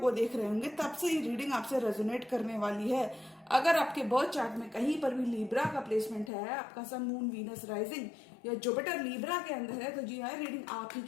देख रहे होंगे तब से ये रीडिंग आपसे रेजोनेट करने वाली है। अगर आपके बर्थ चार्ट में कहीं पर भी लीब्रा का प्लेसमेंट है, आपका सन मून वीनस राइजिंग या जुपिटर लीब्रा के अंदर है, तो जी हाँ, रीडिंग आप ही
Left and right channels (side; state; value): right; drops out; at 6.3 s